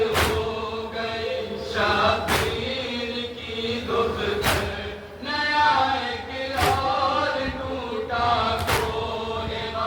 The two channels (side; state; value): both; identical; correlation 1.00